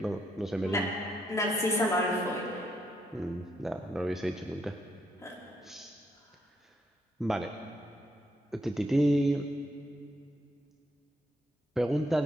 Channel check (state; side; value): normal; both; correlation 0.76